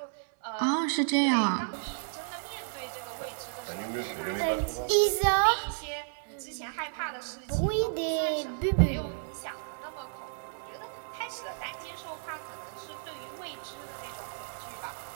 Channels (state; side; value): silent; left; 56 dB below the other